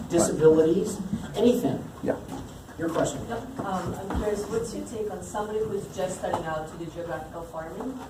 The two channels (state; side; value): identical; both; correlation 1.00